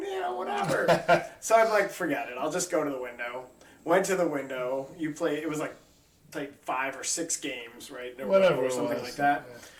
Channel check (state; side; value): identical; both; correlation 1.00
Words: So I'm like, forget it. I'll just go to the window. Went to the window. You play. It was like played 5 or 6 games, right? In a row Whatever or it something was. like that. Yeah.